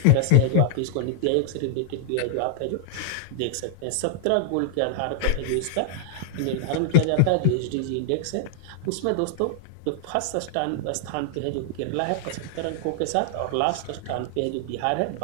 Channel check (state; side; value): different; both; correlation -0.01